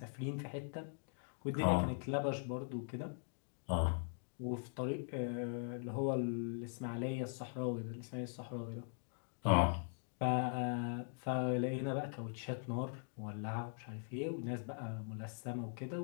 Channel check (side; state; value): right; silent; digital silence